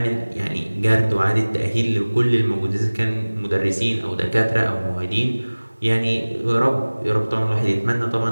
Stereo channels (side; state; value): both; inverted; correlation -1.00